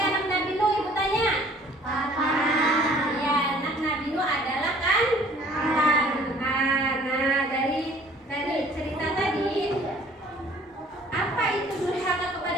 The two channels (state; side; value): normal; both; correlation 0.54